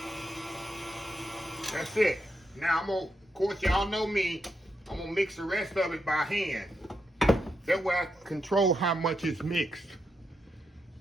That's it. Now I'm gonna, of course, y'all know me, I'm gonna mix the rest of it by hand. That way I control how much is mixed.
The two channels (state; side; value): normal; both; correlation 0.83